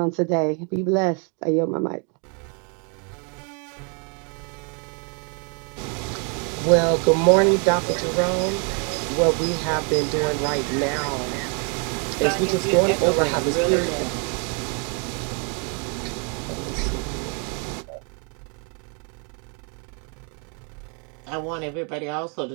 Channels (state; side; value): quieter; left; 37.0 dB